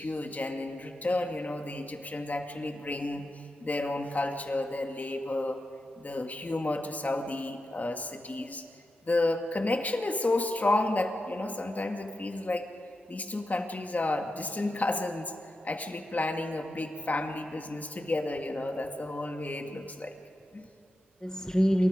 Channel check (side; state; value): both; normal; correlation 0.88